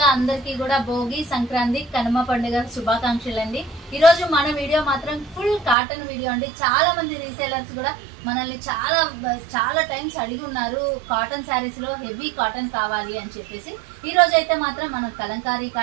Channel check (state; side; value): drops out; left; at 5.8 s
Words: అందరికీ కూడా భోగి, సంక్రాంతి, కనుమ పండుగ శుభాకాంక్షలు అండి. ఈ రోజు మన వీడియో మాత్రం ఫుల్ కాటన్ వీడియో అండి. చాలా మంది రీసేలర్స్ కూడా మనల్ని చాలా టైమ్స్ అడిగి ఉన్నారు కాటన్ శారీస్ లో హెవీ కాటన్ కావాలి అని చెప్పేసి. ఈ రోజు అయితే మాత్రం మనం కలంకారీ